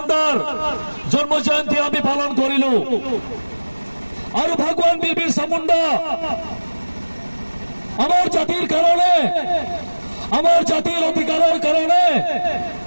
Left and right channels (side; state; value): both; inverted; correlation -1.00